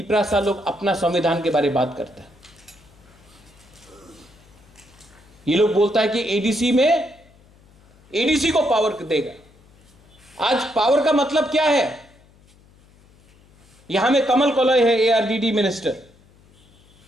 लोग अपना संविधान के बारे में बात करते हैं। ये लोग बोलता है कि एडीसी को पावर देगा। आज पावर का मतलब क्या है? यहां में कमल कोलय है, एआरडीडी मिनिस्टर।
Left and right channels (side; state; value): left; noise; hum, 29 dB below the sound